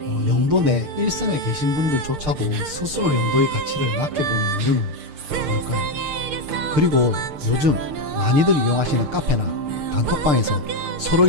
영도 내 일선에 계신 분들조차도 스스로 영도의 가치를 낮게 보는 이유는 뭘까요? 그리고 요즘 많이들 이용하시는 카페나 단톡방에서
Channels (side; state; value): left; late; 6.6 ms